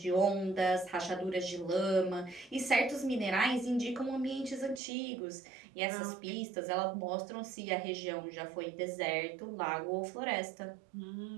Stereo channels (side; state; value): left; drops out; at 4.8 s